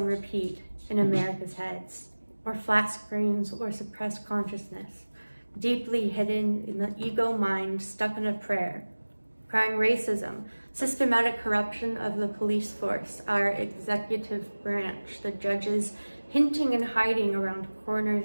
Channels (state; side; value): inverted; both; correlation -1.00